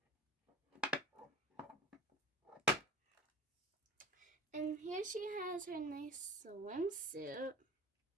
And here she has her nice swimsuit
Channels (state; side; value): normal; both; correlation 0.39